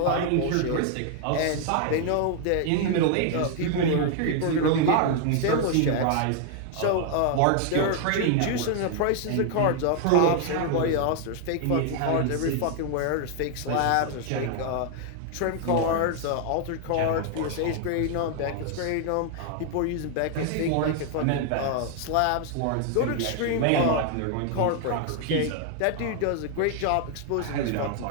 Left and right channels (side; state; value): both; different; correlation 0.00